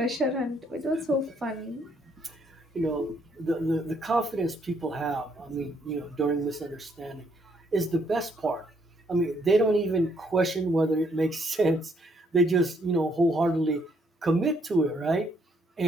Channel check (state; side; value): normal; both; correlation 0.70